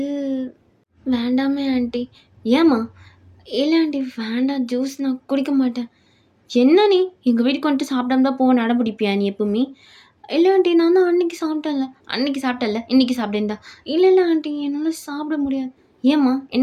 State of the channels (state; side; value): identical; both; correlation 1.00